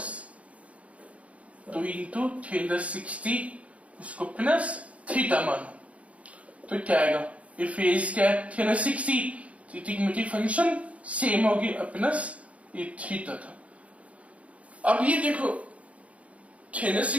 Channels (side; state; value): left; late; 0.065 ms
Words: 2 इंटू 360 उसको प्लस थीटा मानो तो क्या आएगा ये फेज क्या है 360 ट्रिग्नोमेट्रिक फंक्शन सेम होगी प्लस ये थीटा था। अब ये देखो